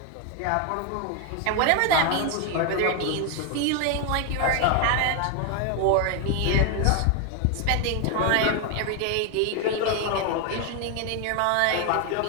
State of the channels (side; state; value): both; different; correlation 0.01